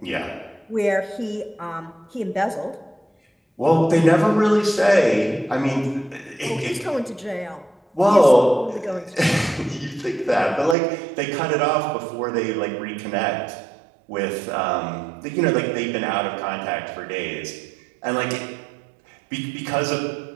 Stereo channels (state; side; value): drops out; left; at 10.8 s